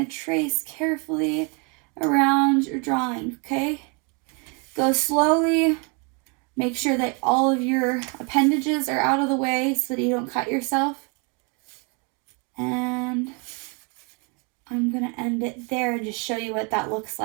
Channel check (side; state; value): left; quieter; 33.8 dB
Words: to trace carefully around your drawing, okay? Go slowly. Make sure that all of your appendages are out of the way so that you don't cut yourself. And I'm going to end it there and just show you what that looks